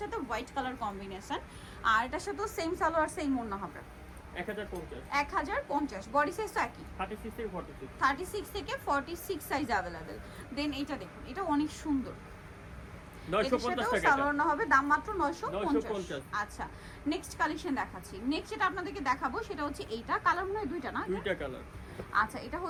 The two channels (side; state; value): both; identical; correlation 1.00